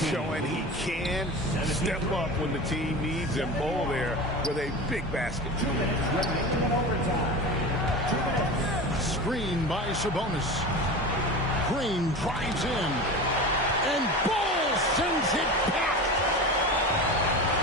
Showing he can step up when the team needs him. Bull there with a big basket. Screen by Sabonis. Green drives in. And Bull sends it back.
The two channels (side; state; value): both; normal; correlation 0.30